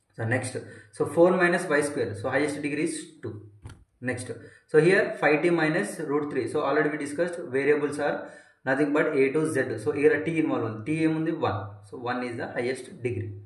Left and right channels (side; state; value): both; identical; correlation 1.00